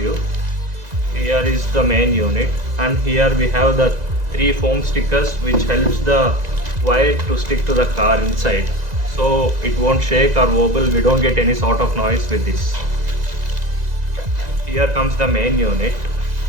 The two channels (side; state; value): left; late; 2.0 ms